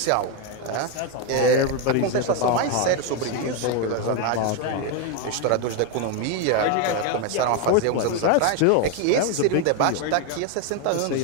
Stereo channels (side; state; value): both; different; correlation 0.02